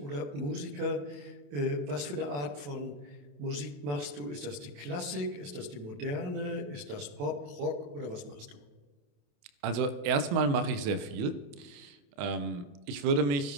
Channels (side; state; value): left; late; 28 ms